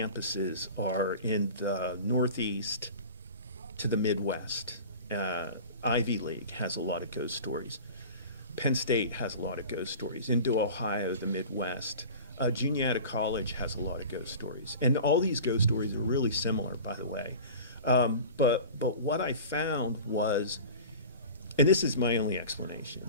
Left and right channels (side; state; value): both; inverted; correlation -0.37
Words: are in the Northeast to the Midwest. Ivy League has a lot of ghost stories. Penn State has a lot of ghost stories. Into Ohio, the Midwest. Juniata College has a lot of ghost stories. And all these ghost stories are really similar, by the way. But what I found was, and this is my only